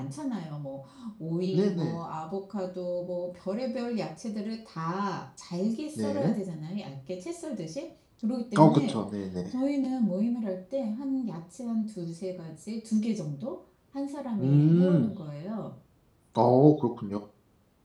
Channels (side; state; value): both; identical; correlation 1.00